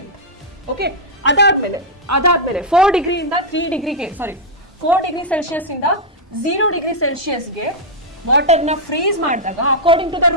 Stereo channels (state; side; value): normal; both; correlation -0.05